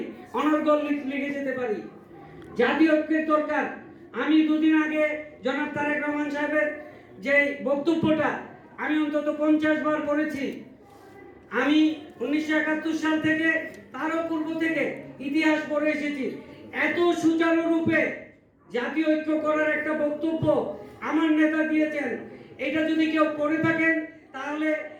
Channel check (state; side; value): identical; both; correlation 1.00